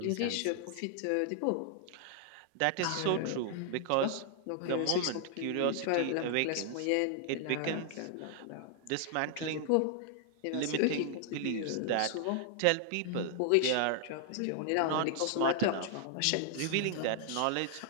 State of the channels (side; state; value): both; different; correlation 0.00